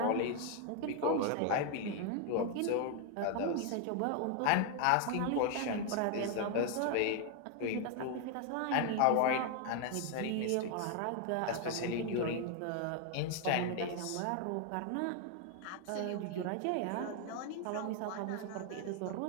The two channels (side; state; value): both; different; correlation 0.01